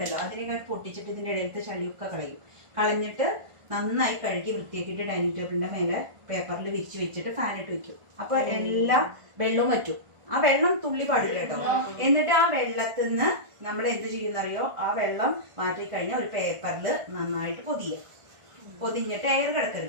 അതിനെ പൊട്ടിച്ചിട്ട് ഇതിന്റെ ഇടയിലത്തെ ചളിയൊക്കെ കളഞ്ഞിട്ട് നന്നായി കഴുകി വൃത്തിയാക്കിയിട്ട് ഡൈനിങ് ടേബിളിന്റെ മേലെ പേപ്പറിൽ വിരിച്ച് വെച്ചിട്ട് ഫാനിട്ട് വെക്കും. അപ്പൊ എല്ലാ വെള്ളവും വറ്റും. ആ വെള്ളം തുള്ളി പാടില്ല കേട്ടോ. എന്നിട്ട് ആ വെള്ളത്തിൽ നിന്ന് നമ്മൾ എന്ത് ചെയ്യുന്നറിയോ, ആ വെള്ളം മാറ്റി കഴിഞ്ഞാൽ ഒരു പേപ്പറിൽ നന്നായിട്ട് പൊതിഞ്ഞിട്ട് എയർ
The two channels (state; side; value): late; left; 1.5 ms